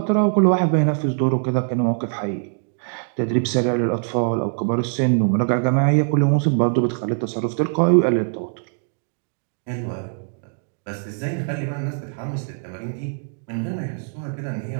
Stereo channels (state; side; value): silent; left; 64 dB below the other